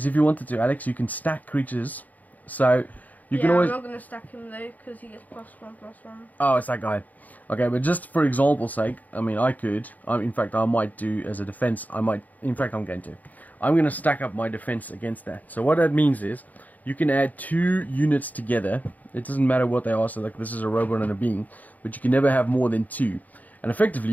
if you wanted to, Alex, you can stack creatures. So you Yeah, can always... I'm not gonna stack him though, because he gets +1/+1. Oh, it's that guy. Okay, but just for example's sake, I mean, I could. In fact, I might do as a defense. In fact, I'm going to. I'm going to stack up my defense against that. So what that means is, you can add 2 units together. It doesn't matter what they are. So like this is a robot and a being, but you can never have more than 2. And effectively,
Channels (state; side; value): late; right; 0.079 ms